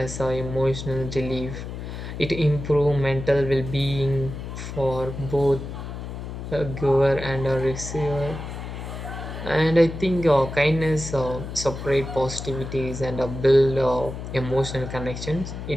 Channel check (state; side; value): noise; left; hum, 8 dB below the sound